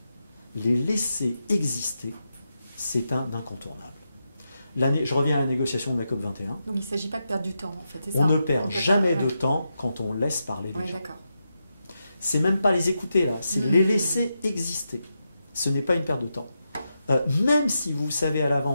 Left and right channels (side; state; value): both; inverted; correlation -0.87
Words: les laisser exister, c'est un incontournable. Je reviens à la négociation de la COP21. Donc il ne s'agit pas de perdre du temps, en fait, c'est ça? On ne perd jamais de temps quand on laisse parler les gens. D'accord. C'est même pas les écouter là, c'est les laisser exister. Ce n'est pas une perte de temps. Même si vous savez à